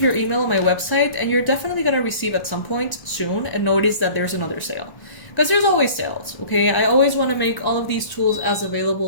your email on my website, and you're definitely going to receive at some point soon and notice that there's another sale, because there's always sales. Okay, I always want to make all of these tools as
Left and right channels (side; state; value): right; late; 1.1 ms